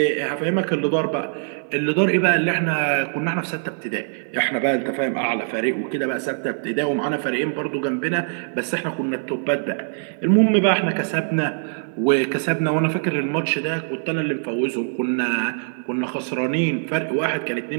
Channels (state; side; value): silent; left; 58 dB below the other